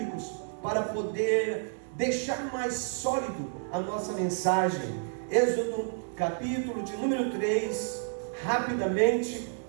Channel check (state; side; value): silent; left; digital silence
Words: para poder deixar mais sólido a nossa mensagem. Êxodo, capítulo de número 3, Rapidamente